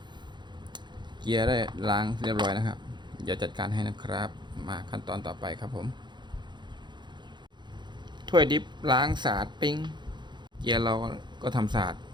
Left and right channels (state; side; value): late; left; 0.22 ms